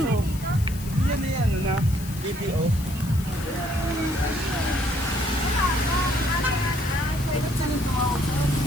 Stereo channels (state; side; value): noise; left; hiss, 16 dB below the sound